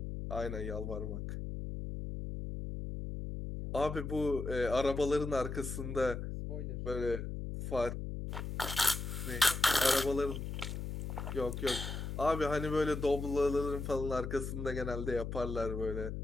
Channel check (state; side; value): noise; left; hum, 5 dB below the sound